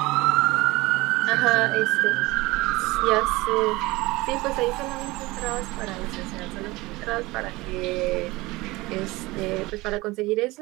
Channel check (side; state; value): left; quieter; 21.1 dB